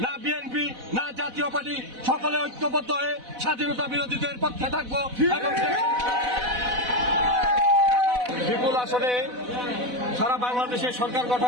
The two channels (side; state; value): left; late; 4.0 ms